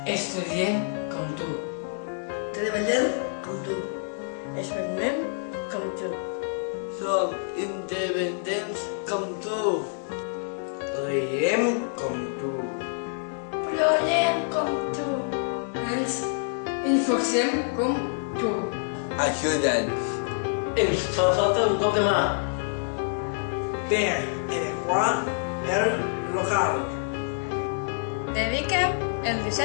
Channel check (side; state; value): right; silent; 60 dB below the other